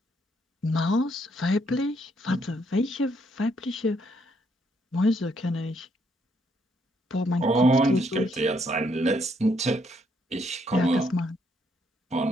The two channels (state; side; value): normal; both; correlation 0.72